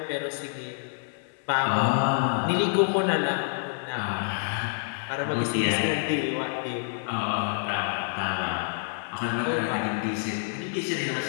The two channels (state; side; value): silent; right; 60 dB below the other